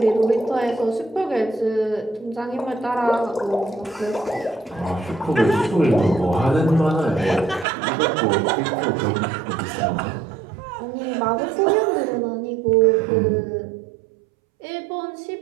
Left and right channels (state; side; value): drops out; left; at 7.7 s